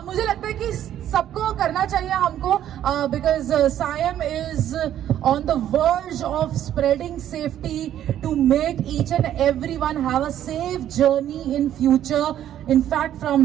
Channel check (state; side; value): quieter; left; 11.2 dB